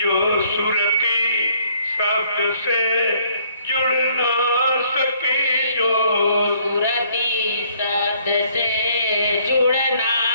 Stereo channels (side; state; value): both; inverted; correlation -0.64